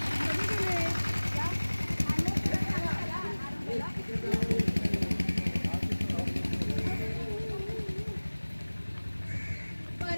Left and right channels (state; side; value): inverted; both; correlation -1.00